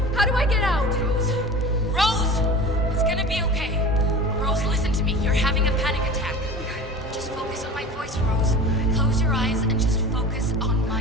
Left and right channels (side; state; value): both; normal; correlation 0.36